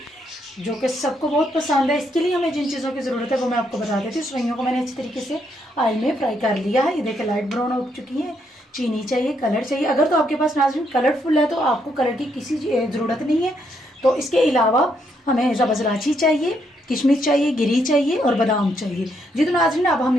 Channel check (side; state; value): both; normal; correlation 0.75